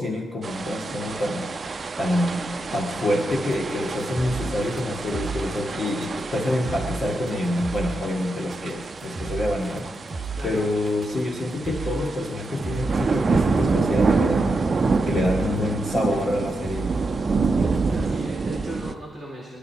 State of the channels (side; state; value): both; normal; correlation 0.85